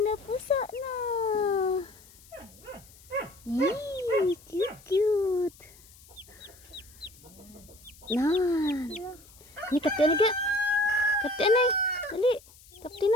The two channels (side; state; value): left; noise; hiss, 24 dB below the sound